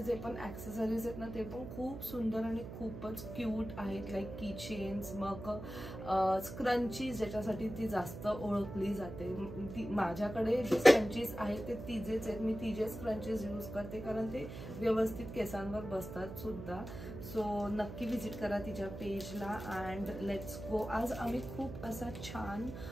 जे पण ॲक्सेसरीज आहेत ना ते पण खूप सुंदर आणि खूपच क्यूट आहेत. लाईक की चेन्स, मग स्क्रंचीज ज्याच्यासाठी ती जास्त ओळखली जाते. ती माझ्याकडे जे स्क्रंचीज आहेत ते तिचेच आहेत, मी तिचे स्क्रंचीज यूज करते कारण ते व्यवस्थित केसांवर बसतात सुद्धा. सो नक्की व्हिजिट करा तिच्या पेजला अँड लेट्स गो. आज आम्ही खूप असा छान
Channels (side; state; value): right; noise; hum, 10 dB below the sound